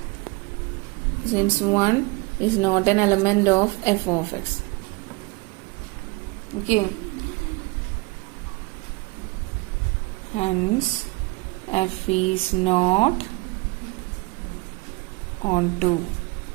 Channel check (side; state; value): left; quieter; 25.5 dB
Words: Since 1 is not an element of f of x. Okay. Hence f is not onto.